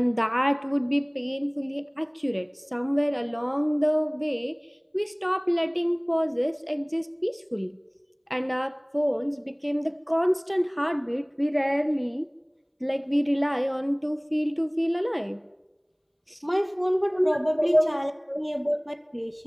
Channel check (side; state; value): both; identical; correlation 1.00